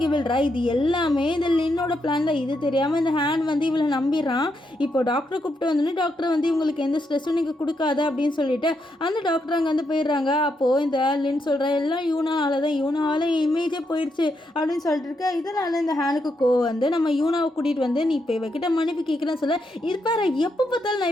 விழுறா. இது எல்லாமே இந்த லின்னோட பிளான் தான். இது தெரியாமல் இந்த ஹேன் இவளை நம்பிடுறான். இப்போ டாக்டரை கூப்பிட்டு வந்தோடனே டாக்டர் இவங்களுக்கு எந்த ஸ்ட்ரெஸ்ஸும் நீங்கள் கொடுக்காத அப்படின்னு சொல்லிட்டு அந்த டாக்டர் அங்கே போயிடுறாங்க. அப்போது இந்த லின் சொல்கிற எல்லாம் யூனால தான், யூனாவால் இமேஜே போயிடுச்சு அப்படின்னு சொல்லிட்டு இருக்க. இதனால இந்த ஹேனுக்கு நம்ம யூனாவை கூட்டிகிட்டு நீ இப்போ இவகிட்ட மன்னிப்பு கேட்குறேன்னு சொல்ல, இது பாரு எப்போ பார்த்தாலும் நான்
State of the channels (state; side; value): normal; both; correlation 0.81